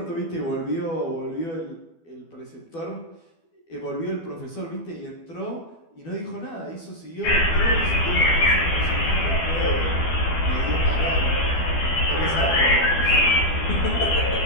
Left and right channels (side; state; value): right; late; 12 ms